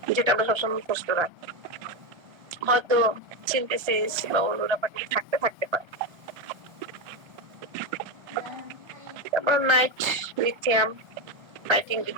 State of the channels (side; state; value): left; late; 1.3 ms